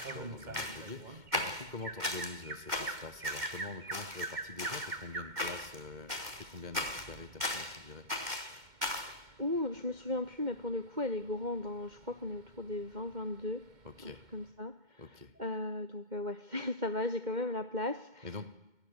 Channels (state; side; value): late; left; 2.2 ms